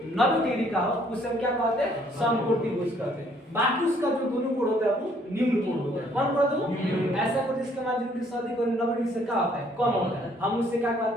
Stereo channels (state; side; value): normal; both; correlation 0.64